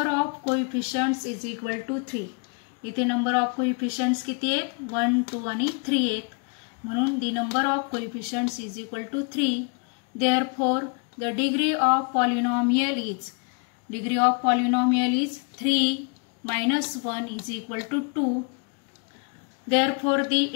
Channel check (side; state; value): right; quieter; 35.5 dB